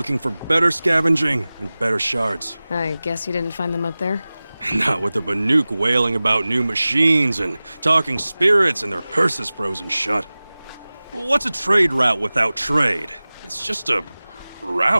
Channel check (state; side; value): inverted; both; correlation -0.98